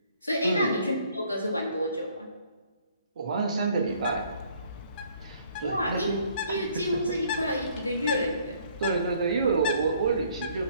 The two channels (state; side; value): inverted; both; correlation -0.62